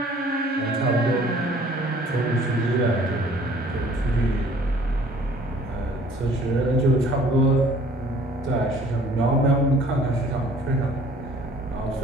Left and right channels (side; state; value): both; normal; correlation 0.54